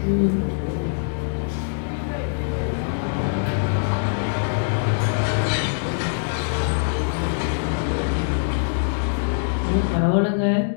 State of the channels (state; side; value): silent; right; digital silence